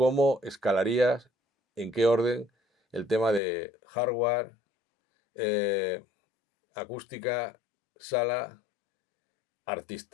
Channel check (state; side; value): drops out; right; at 3.4 s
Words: escalarías, en qué orden, el tema de hardware, eh, acústica, sala,